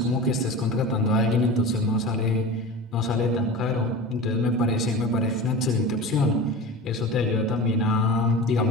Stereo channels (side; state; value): both; normal; correlation 0.32